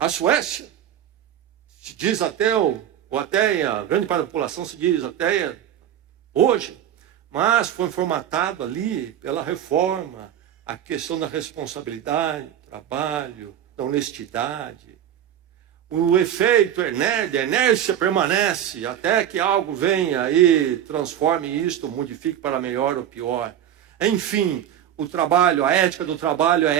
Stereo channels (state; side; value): quieter; left; 10.4 dB